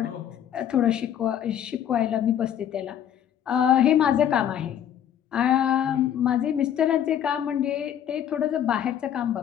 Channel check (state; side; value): quieter; right; 9.9 dB